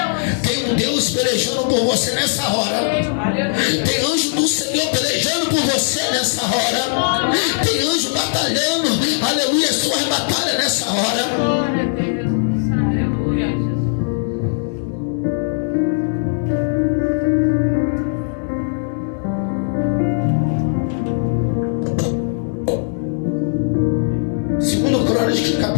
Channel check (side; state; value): right; silent; digital silence